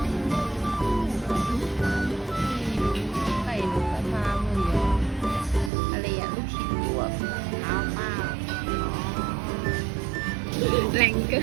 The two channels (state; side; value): drops out; left; at 5.7 s